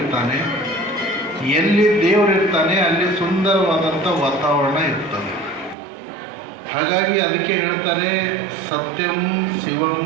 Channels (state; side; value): drops out; left; at 5.8 s